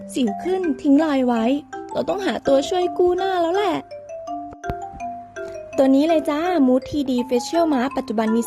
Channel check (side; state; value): both; identical; correlation 1.00